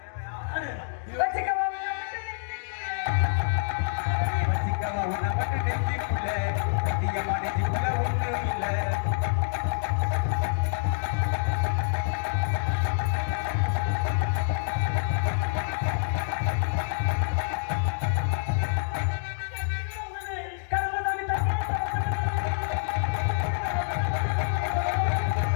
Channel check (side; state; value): right; silent; digital silence